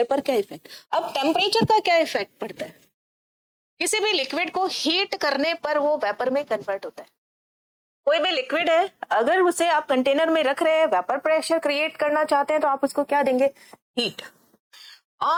पर क्या इफेक्ट. अब टेम्परेचर का क्या इफेक्ट पड़ता है? किसी भी लिक्विड को हीट करने पर वो वेपर में कन्वर्ट होता है. कोई भी लिक्विड है, अगर उसे आप कंटेनर में रख रहे हैं, वेपर प्रेशर क्रिएट करना चाहते हैं, तो आप उसको क्या देंगे? हीट.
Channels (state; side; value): identical; both; correlation 1.00